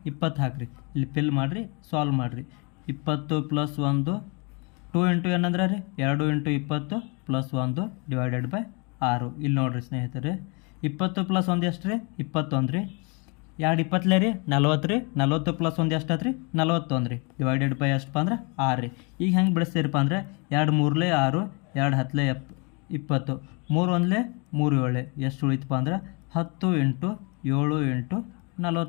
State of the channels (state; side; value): quieter; right; 32.3 dB